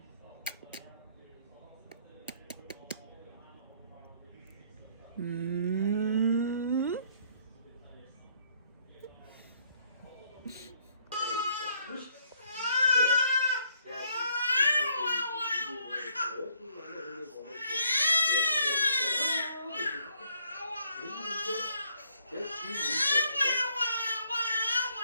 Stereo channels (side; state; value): both; inverted; correlation -0.66